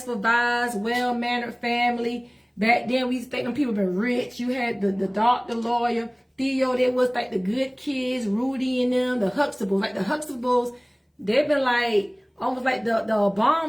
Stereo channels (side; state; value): both; identical; correlation 1.00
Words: vibes, well-mannered family. Back then, we used to think them people been rich. You had the doctor, lawyer, Theo. They was like the good kids, Rudy and them, the Huxtables. Like the Huxtables, they've been like almost like the